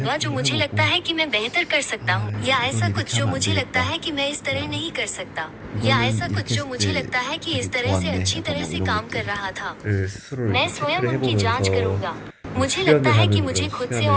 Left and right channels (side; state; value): both; identical; correlation 1.00